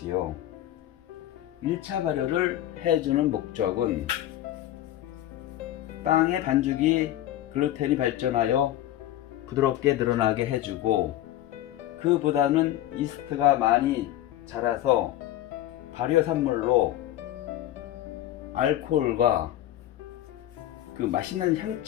1차 발효를 해주는 목적은 빵의 반죽이 글루텐이 발전하여 부드럽게 늘어나게 해주고, 그보다는 이스트가 많이 자라서 발효산물로 알코올과 그 맛있는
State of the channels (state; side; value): quieter; right; 13.4 dB